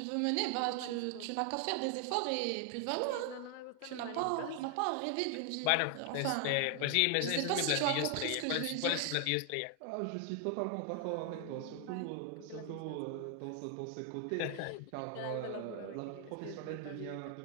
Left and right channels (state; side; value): different; both; correlation 0.00